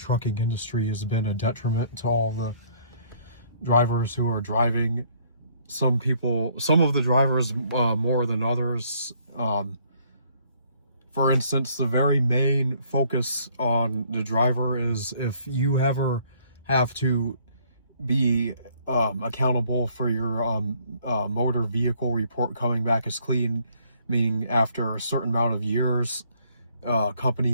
industry has been a detriment to all the drivers who are driving. Some of the drivers more than others. For instance, the very main focus on the driver is if you ever have to be accountable for your motor vehicle report coming back as clean, meaning after a certain amount of years,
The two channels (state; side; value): inverted; both; correlation -0.62